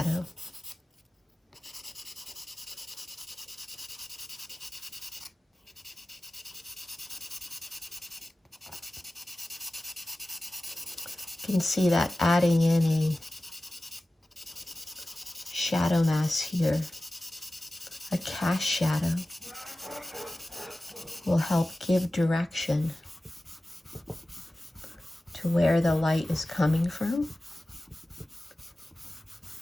You can see that adding in a shadow mask here, a cast shadow, will help give direction to where the light is coming from.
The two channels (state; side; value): normal; both; correlation 0.96